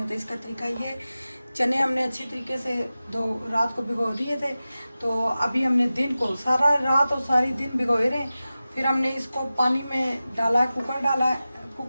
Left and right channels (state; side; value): inverted; both; correlation -0.95